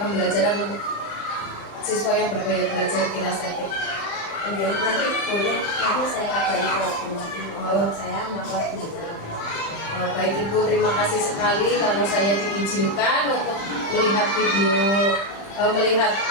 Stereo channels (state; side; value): late; right; 35 ms